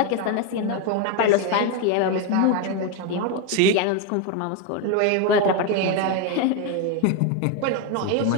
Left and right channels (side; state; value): both; different; correlation 0.02